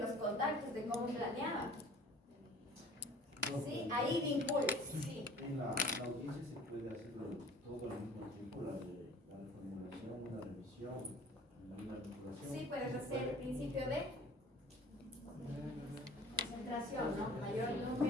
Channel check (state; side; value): normal; both; correlation 0.47